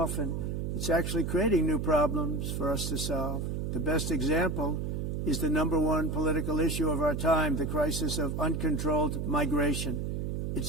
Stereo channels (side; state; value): right; noise; hum, 2 dB below the sound